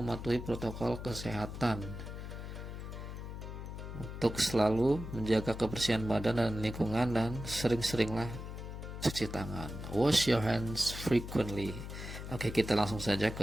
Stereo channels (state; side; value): noise; left; hum, 8 dB below the sound